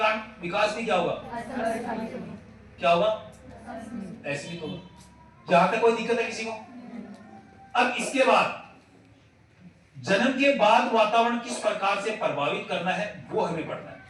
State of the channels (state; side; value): identical; both; correlation 1.00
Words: विकास भी क्या होगा? क्या होगा? असीमित होगा। यहां तक कोई दिक्कत है किसी को? अब इसके बाद जन्म के बाद वातावरण किस प्रकार से प्रभावित करना है वो हमें पढ़ना है।